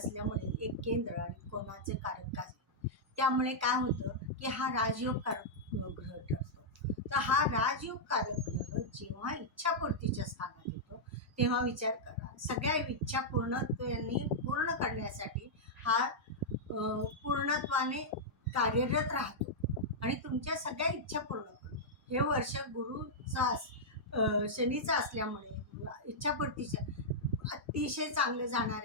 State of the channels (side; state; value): both; normal; correlation -0.07